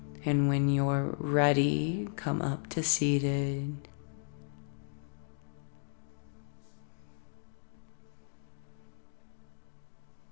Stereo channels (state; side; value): silent; right; digital silence